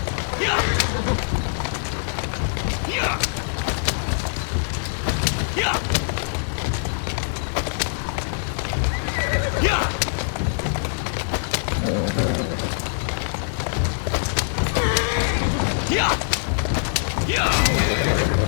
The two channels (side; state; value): right; silent; 63 dB below the other